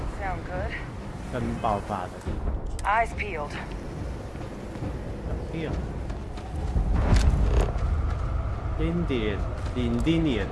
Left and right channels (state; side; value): identical; both; correlation 1.00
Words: 跟爆发的地方。Eyes peeled. Peeled. Indian